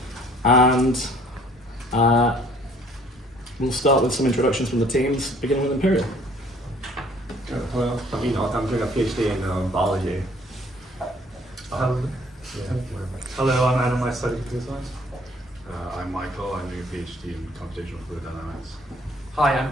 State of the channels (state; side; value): normal; both; correlation 0.58